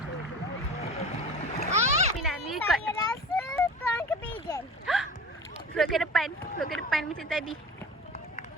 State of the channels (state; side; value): normal; both; correlation 0.36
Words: Nak ni ikut. Saya rasa tuan ke pigeon. Float ke depan. Float ke depan macam tadi.